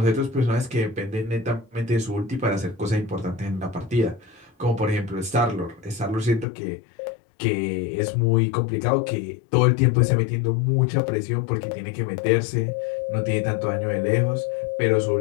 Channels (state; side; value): drops out; right; at 6.5 s